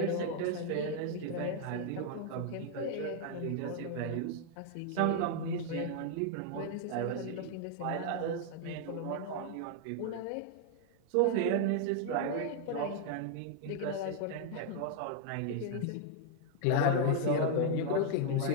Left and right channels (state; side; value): different; both; correlation 0.00